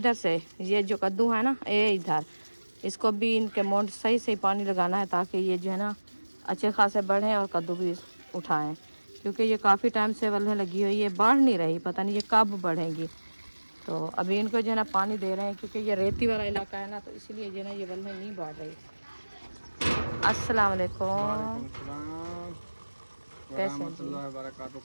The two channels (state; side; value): inverted; both; correlation -1.00